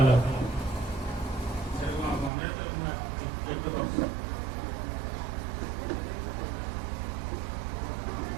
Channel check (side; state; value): left; drops out; at 2.3 s